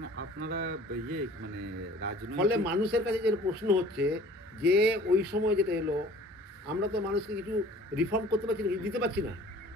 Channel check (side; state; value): both; normal; correlation 0.49